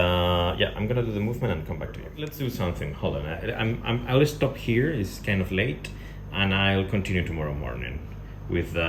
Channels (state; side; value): identical; both; correlation 1.00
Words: I'm gonna do the movement and come back to you. Let's do something. Hold on. I'll stop here. It's kind of late, and I'll continue tomorrow morning with